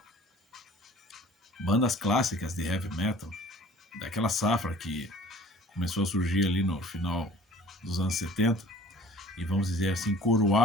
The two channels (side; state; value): both; normal; correlation 0.48